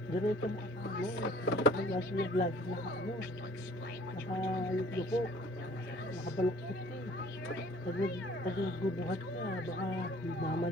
Diretso mo ano, nag-aso yung vlog na ano, nakayuko, nakabaluktot ka eh. Pag nagbubuhat ka, baka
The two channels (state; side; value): normal; both; correlation 0.53